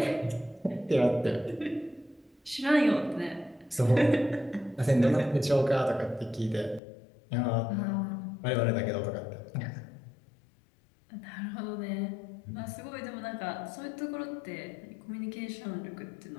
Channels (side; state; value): right; drops out; at 6.8 s